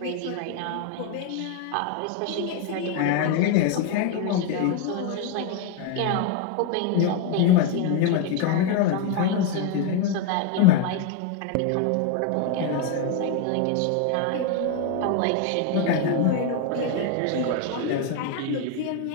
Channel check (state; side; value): different; both; correlation 0.01